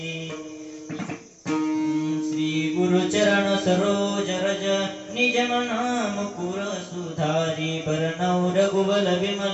श्री गुरु चरण सरोज रज निज मन मुकुर सुधारी बरनौ रघुबल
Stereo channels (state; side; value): identical; both; correlation 1.00